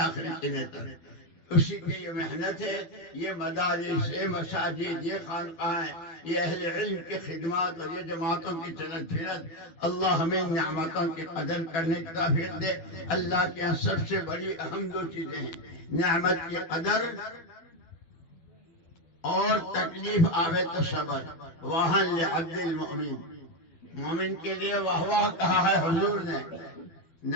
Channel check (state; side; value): late; right; 12 ms